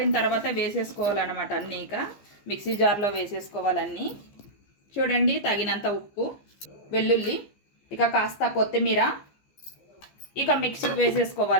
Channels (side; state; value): right; late; 15 ms